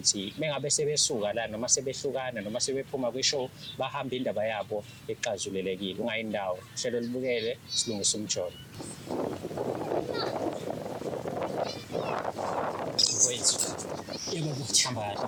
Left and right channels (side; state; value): both; identical; correlation 1.00